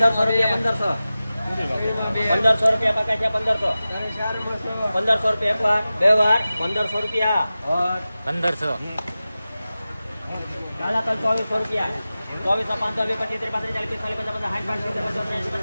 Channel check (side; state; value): both; inverted; correlation -0.95